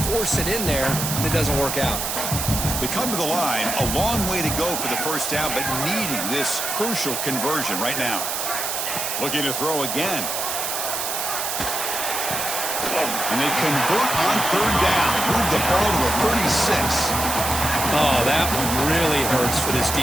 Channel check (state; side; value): noise; right; hiss, 2 dB below the sound